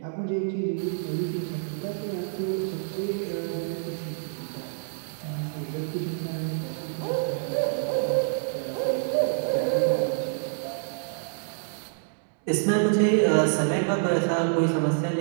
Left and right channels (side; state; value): left; silent; digital silence